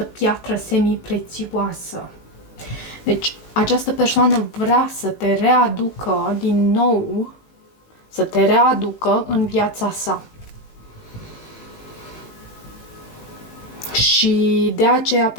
piatră semi-prețioasă. Deci, această persoană vrea să te readucă din nou, să te readucă în viața sa. Și de aceea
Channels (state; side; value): late; right; 18 ms